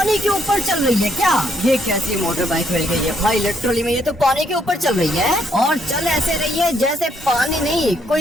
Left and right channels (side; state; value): both; normal; correlation 0.72